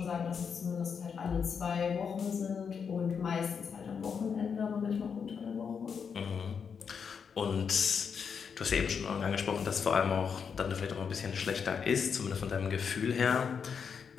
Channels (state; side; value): quieter; right; 6.5 dB